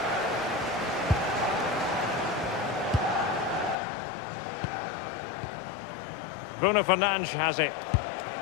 Bruno Fernandes has it.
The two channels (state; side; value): drops out; right; at 3.8 s